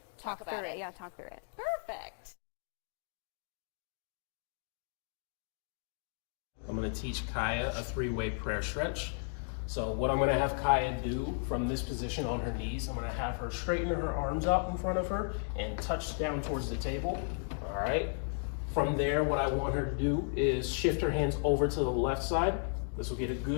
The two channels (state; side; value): silent; right; 55 dB below the other